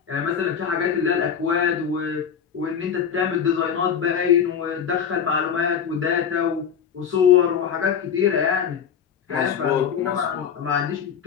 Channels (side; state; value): right; quieter; 7.6 dB